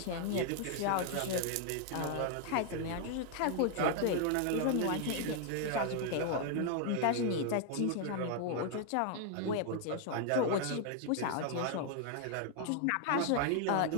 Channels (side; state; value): both; different; correlation 0.00